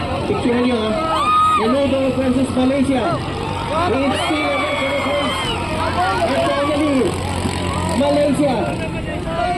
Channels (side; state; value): both; identical; correlation 1.00